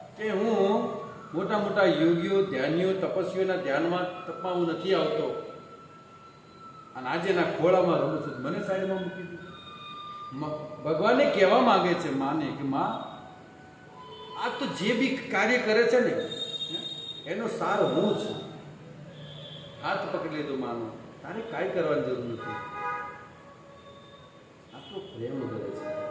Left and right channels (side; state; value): both; identical; correlation 1.00